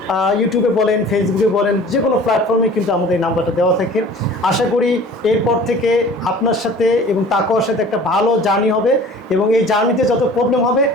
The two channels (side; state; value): both; normal; correlation 0.45